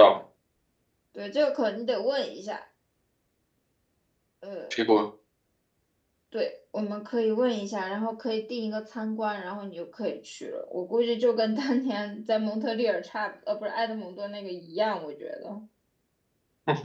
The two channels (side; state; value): both; identical; correlation 1.00